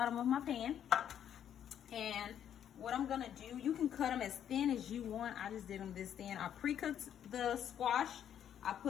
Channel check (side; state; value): right; quieter; 9.6 dB